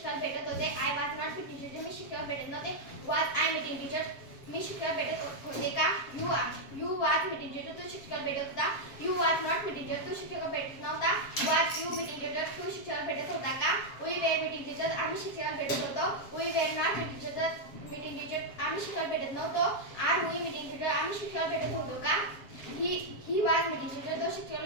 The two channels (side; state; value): right; late; 7.5 ms